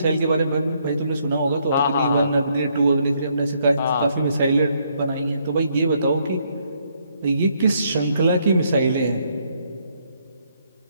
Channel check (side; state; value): both; inverted; correlation -0.72